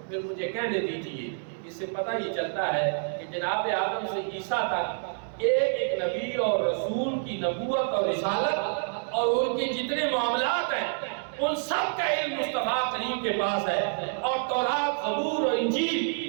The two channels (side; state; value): left; silent; 59 dB below the other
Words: پھر مجھے کہنے دیجئے، اس سے پتہ ہی چلتا ہے کہ جناب آدم سے عیسیٰ تک ایک ایک نبی اور رسول کی نبوت اور رسالت اور ان کے جتنے معاملات ہیں ان سب کا علم مصطفیٰ کریم کے پاس ہے، اور تورات، زبور اور انجیل